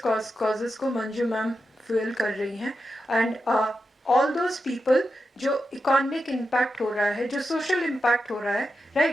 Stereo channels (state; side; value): normal; both; correlation 0.88